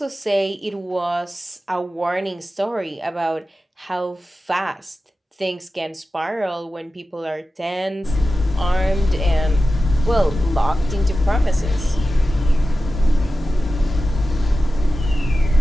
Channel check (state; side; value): normal; both; correlation 0.94